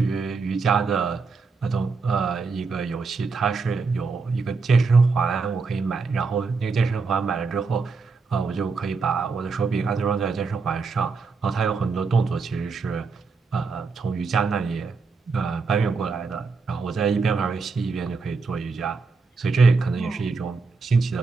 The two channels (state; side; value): quieter; left; 4.5 dB